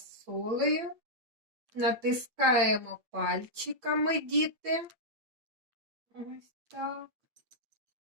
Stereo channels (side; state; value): left; late; 8.6 ms